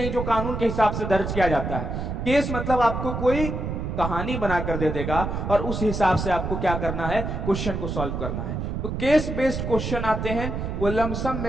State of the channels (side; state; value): right; noise; rumble, 3 dB below the sound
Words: जो कानून के हिसाब से दर्ज किया जाता है। केस मतलब आपको कोई कहानी बनाकर दे देगा और उस हिसाब से आपको क्या करना है? क्वेश्चन को सॉल्व करना है। तो केस बेस्ड क्वेश्चन आते हैं, वो लमसम